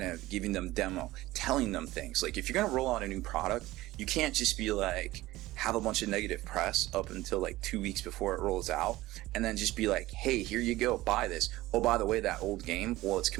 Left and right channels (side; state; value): left; quieter; 17.5 dB